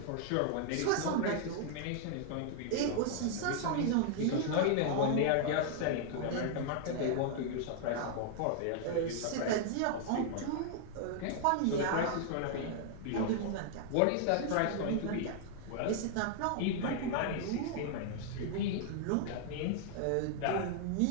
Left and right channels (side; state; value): both; different; correlation 0.00